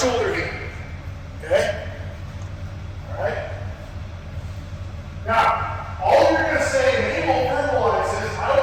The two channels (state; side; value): identical; both; correlation 1.00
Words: here. Okay. Right? Now, all you're going to say, and they won't verbalize this, I